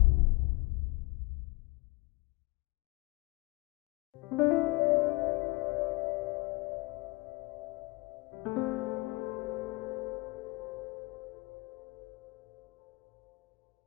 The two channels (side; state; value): right; quieter; 24.8 dB